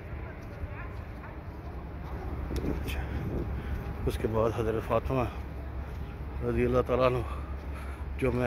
अच्छा। उसके बाद हज़रत फ़ातिमा रज़ी अल्लाह ताला अन्हु, जो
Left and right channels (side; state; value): both; identical; correlation 1.00